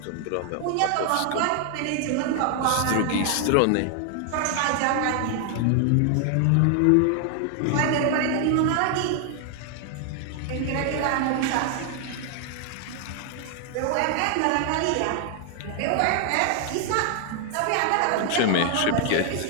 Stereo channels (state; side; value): different; both; correlation 0.00